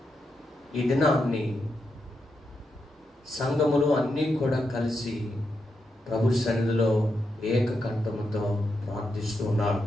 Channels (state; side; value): normal; both; correlation 0.84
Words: ఈ దినాన్ని సంఘములు అన్నీ కూడా కలిసి ప్రభు సన్నిధిలో ఏకకంఠముతో ప్రార్థిస్తూ ఉన్నారు.